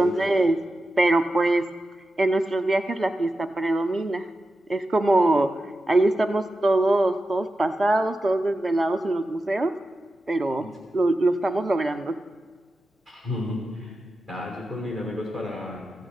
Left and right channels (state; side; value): normal; both; correlation 0.91